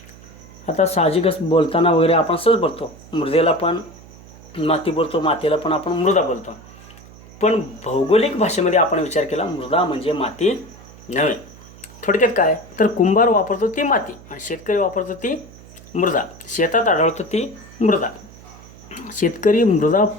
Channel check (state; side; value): noise; right; hum, 20 dB below the sound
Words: आता साहजिकच बोलताना वगैरे आपण सहज बोलतो. मृदेला पण माती बोलतो, मातीला पण आपण मृदा बोलतो. पण भौगोलिक भाषेमध्ये आपण विचार केला, मृदा म्हणजे माती नव्हे. थोडक्यात काय तर कुंभार वापरतो ती माती आणि शेतकरी वापरतो ती मृदा. शेतात आढळतो ती मृदा. शेतकरी मृदा